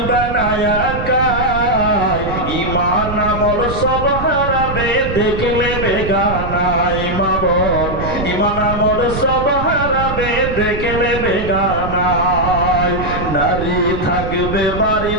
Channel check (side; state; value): right; noise; rumble, 6 dB below the sound